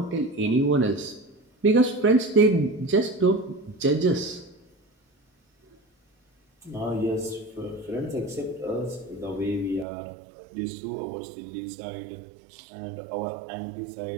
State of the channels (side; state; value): left; drops out; at 9.9 s